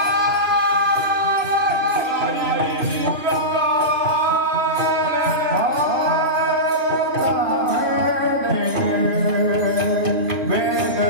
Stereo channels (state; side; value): late; left; 3.0 ms